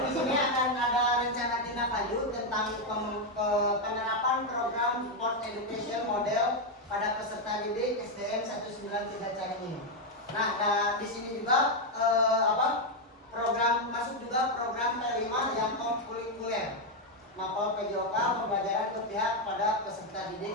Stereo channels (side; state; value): both; normal; correlation 0.03